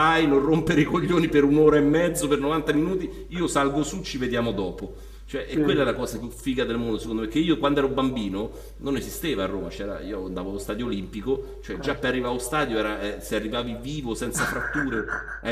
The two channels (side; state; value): both; identical; correlation 1.00